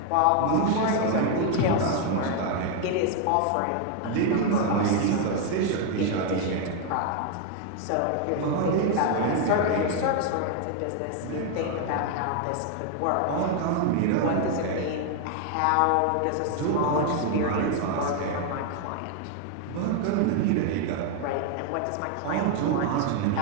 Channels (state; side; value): different; both; correlation 0.01